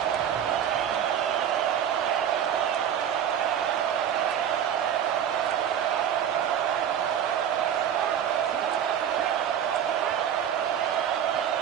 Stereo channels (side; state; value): left; quieter; 9.3 dB